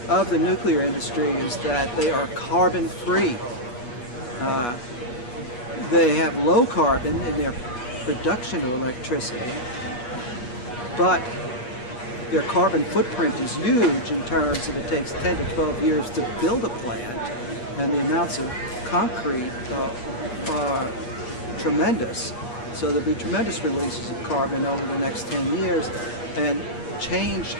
of the nuclear industry is that they are carbon free. They have low carbon in their production of electricity, but their carbon footprint is huge in terms of it takes 10 to 12 years to build a plant, and the amounts of concrete are tremendous. So there'll be tremendous releases of carbon over the next 10 years, and change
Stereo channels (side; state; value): right; late; 8.3 ms